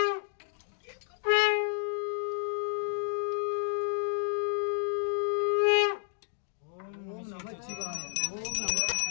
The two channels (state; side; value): silent; right; digital silence